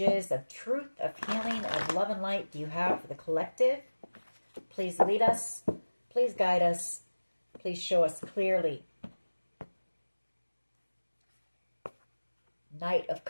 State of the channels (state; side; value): inverted; both; correlation -1.00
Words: of truth, of healing, of love and light do you have for the collective? Please lead us. Please guide us. Please show us clearly. Knight of